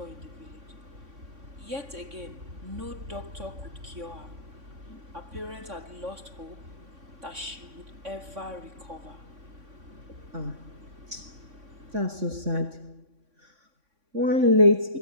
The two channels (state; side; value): late; left; 3.6 ms